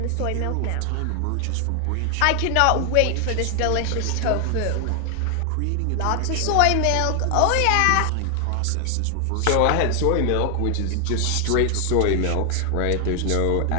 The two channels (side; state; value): both; different; correlation 0.00